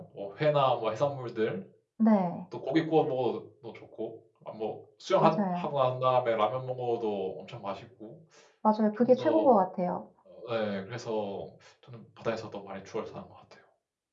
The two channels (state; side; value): identical; both; correlation 1.00